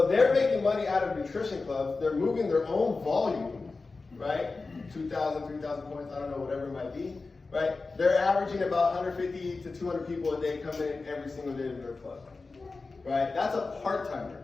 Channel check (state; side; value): quieter; right; 3.9 dB